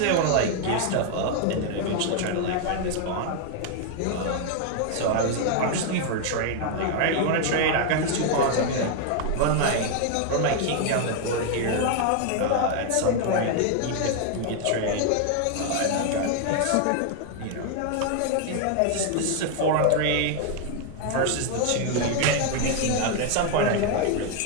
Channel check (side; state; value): both; different; correlation 0.00